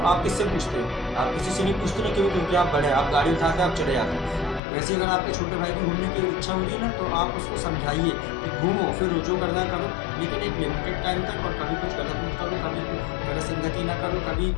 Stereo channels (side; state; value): right; drops out; at 4.6 s